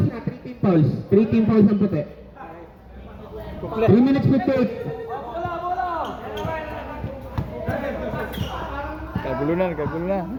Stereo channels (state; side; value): identical; both; correlation 1.00